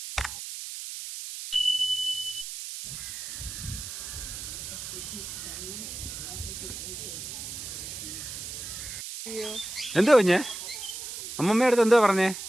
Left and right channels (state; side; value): noise; right; hiss, 8 dB below the sound